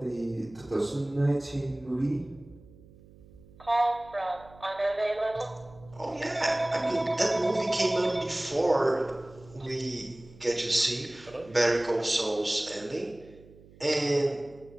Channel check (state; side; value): noise; right; hum, 23 dB below the sound